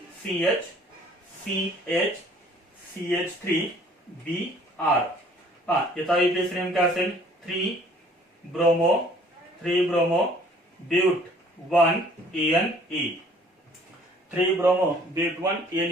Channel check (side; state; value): both; normal; correlation 0.56